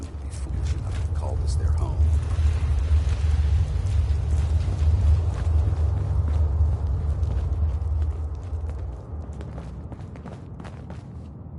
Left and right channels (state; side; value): identical; both; correlation 1.00